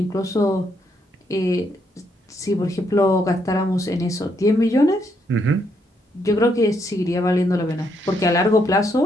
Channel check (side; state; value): both; normal; correlation 0.75